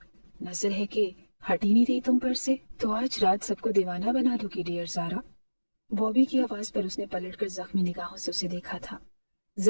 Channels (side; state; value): both; inverted; correlation -1.00